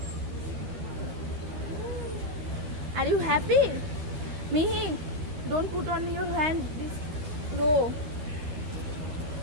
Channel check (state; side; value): late; left; 12 ms